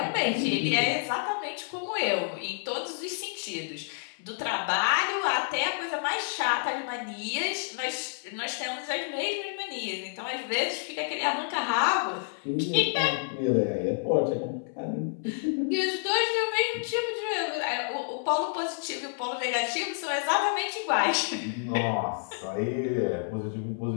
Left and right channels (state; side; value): silent; right; 58 dB below the other